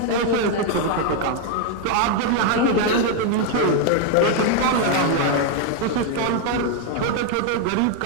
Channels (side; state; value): both; different; correlation 0.01